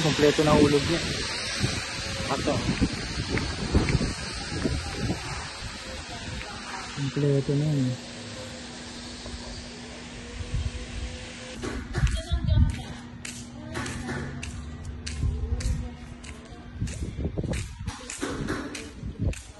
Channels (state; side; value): identical; both; correlation 1.00